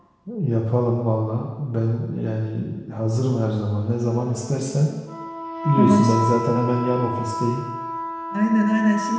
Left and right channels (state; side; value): identical; both; correlation 1.00